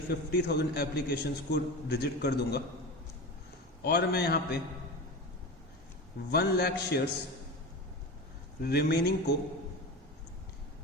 50,000 एप्लीकेशंस को रिजेक्ट कर दूंगा और मैं यहाँ पे 1 लाख शेयर्स रिमेनिंग को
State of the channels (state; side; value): normal; both; correlation 0.27